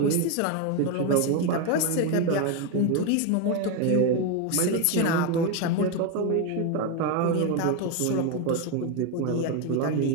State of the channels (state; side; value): different; both; correlation 0.02